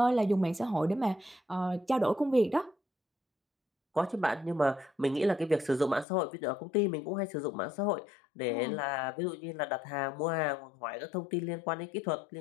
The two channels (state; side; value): drops out; right; at 6.1 s